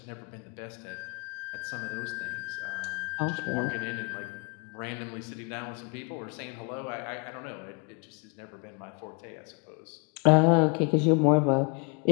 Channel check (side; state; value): right; quieter; 32.9 dB